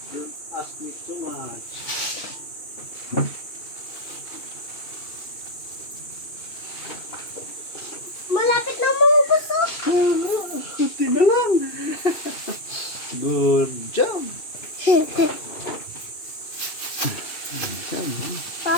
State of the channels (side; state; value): right; late; 2.7 ms